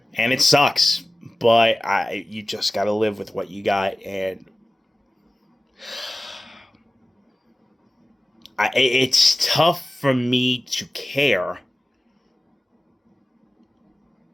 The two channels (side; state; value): both; normal; correlation 0.96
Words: And it sucks, but you just got to live with what you got. And it's tough for me to care